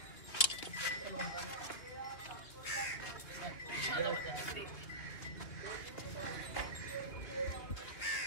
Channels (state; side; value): late; right; 2.6 ms